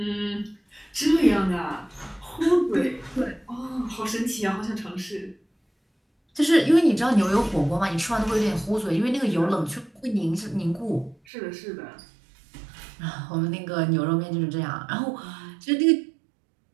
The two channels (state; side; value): drops out; left; at 11.2 s